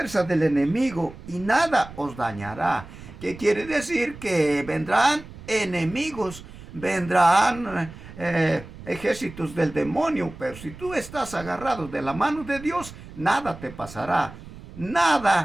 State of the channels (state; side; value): noise; right; rumble, 16 dB below the sound